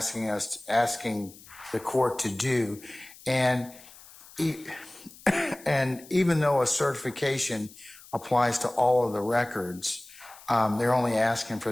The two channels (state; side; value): noise; left; hiss, 21 dB below the sound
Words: the court to do, and even though a certification applies to all of the records, they're only asking for